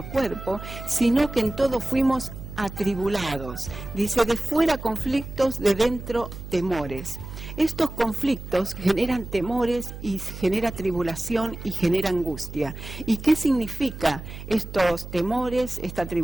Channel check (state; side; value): noise; right; hum, 11 dB below the sound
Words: cuerpo, sino que en todo fuimos atribulados. Dice, de fuera conflictos, de dentro temores. Estos conflictos generan temores y genera tribulación y genera angustia. ¿Y qué significa estos temores, esta